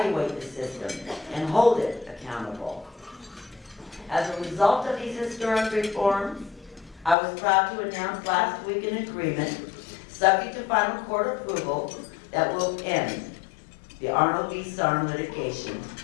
the system and hold it accountable. As a result of these historic reforms, I was proud to announce last week an agreement, subject to final court approval, that will end the Arnold v. Sharpe litigation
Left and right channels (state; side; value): drops out; right; at 7.2 s